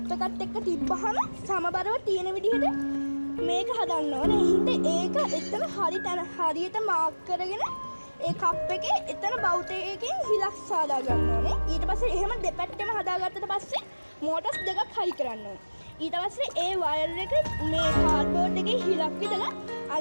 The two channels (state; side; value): inverted; both; correlation -1.00